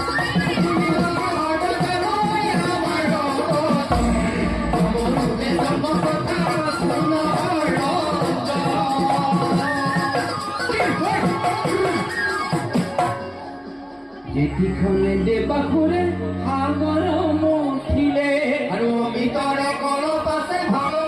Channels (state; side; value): identical; both; correlation 1.00